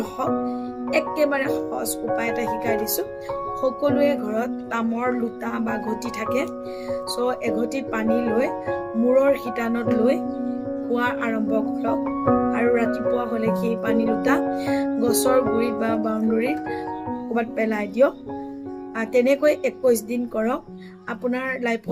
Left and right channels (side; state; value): both; identical; correlation 1.00